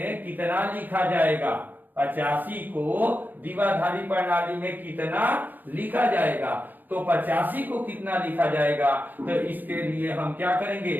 कितना लिखा जाएगा। 85 को द्विआधारी प्रणाली में कितना लिखा जाएगा, तो 85 को कितना लिखा जाएगा, तो इसके लिए हम क्या करेंगे,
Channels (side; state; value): left; late; 0.090 ms